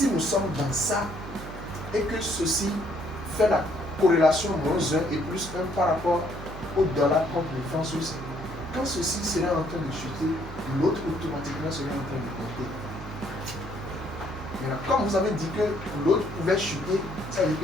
nous sommes dans ça et que ceci fait la corrélation moins 1 et plus 1 par rapport au dollar contre le franc suisse, quand ceci serait en train de chuter, l'autre automatiquement serait en train de monter. Maintenant, comme vous avez dit que l'autre pouvait chuter, ça veut dire que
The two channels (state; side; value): noise; right; hum, 12 dB below the sound